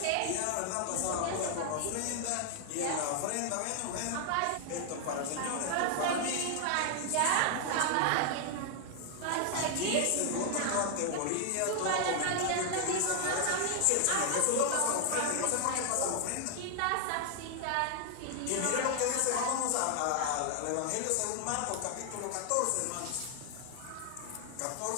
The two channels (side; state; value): both; different; correlation 0.00